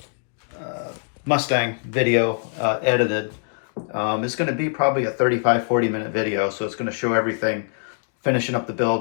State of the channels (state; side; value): silent; right; digital silence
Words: Mustang video edited. It's going to be probably a 35-40 minute video, so it's going to show everything, finishing up the